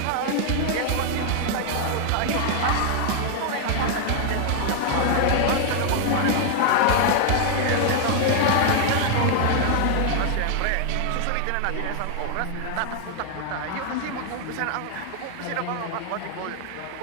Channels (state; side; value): different; both; correlation 0.00